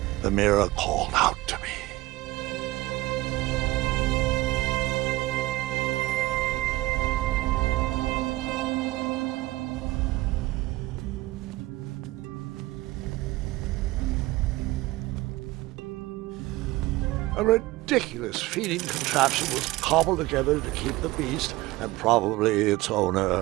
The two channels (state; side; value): quieter; left; 19.1 dB